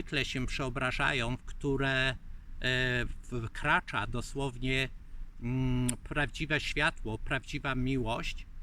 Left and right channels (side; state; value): both; identical; correlation 1.00